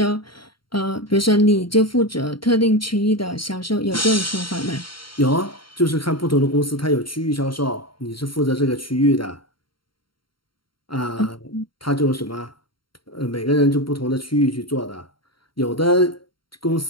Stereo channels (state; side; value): late; right; 0.73 ms